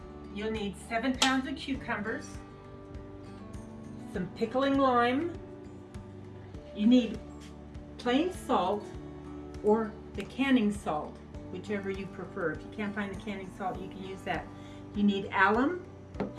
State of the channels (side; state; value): both; identical; correlation 1.00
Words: you'll need 7 pounds of cucumbers, some pickling lime. You need plain salt or the canning salt, whichever you prefer. If you can't find the canning salt, you can use that. You need alum.